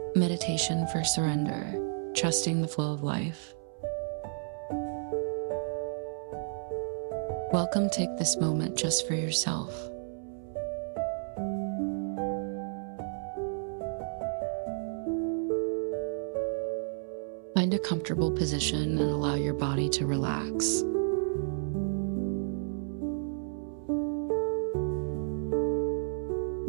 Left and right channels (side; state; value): left; silent; 57 dB below the other